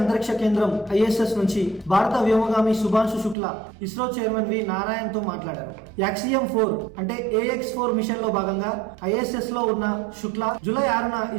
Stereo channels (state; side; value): drops out; left; at 3.4 s